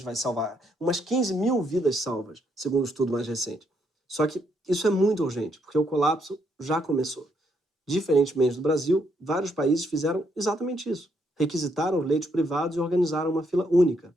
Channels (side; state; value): both; normal; correlation 0.74